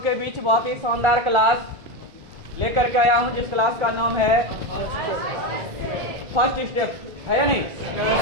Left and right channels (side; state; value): left; late; 1.4 ms